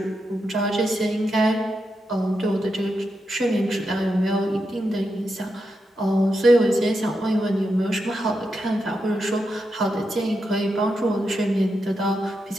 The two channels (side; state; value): both; normal; correlation 0.86